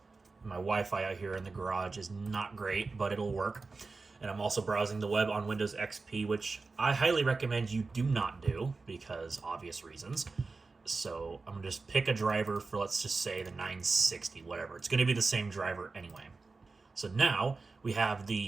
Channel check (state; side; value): quieter; left; 4.0 dB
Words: My Wi-Fi out here in the garage is not great, but it'll work. And I'm also browsing the web on Windows XP, which I highly recommend you do not do, because obvious reasons. So I'm going to just pick a driver for, let's just say, the 960, whatever. It's going to be the same driver anyway. So now we have